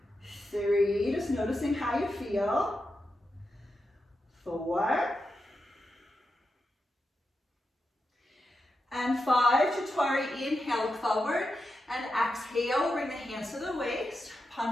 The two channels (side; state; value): both; normal; correlation 0.88